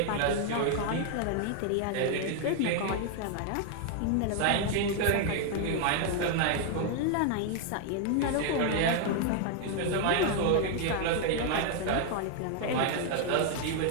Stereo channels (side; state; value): both; different; correlation 0.00